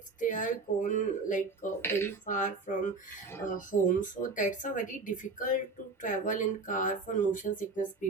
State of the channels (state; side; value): quieter; left; 3.8 dB